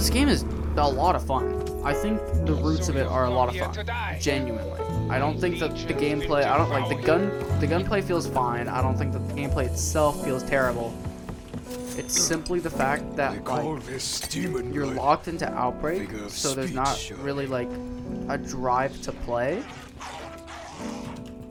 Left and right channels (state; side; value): identical; both; correlation 1.00